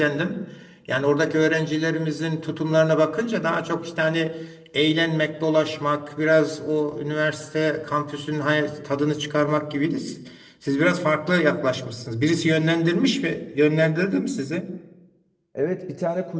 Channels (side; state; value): both; identical; correlation 1.00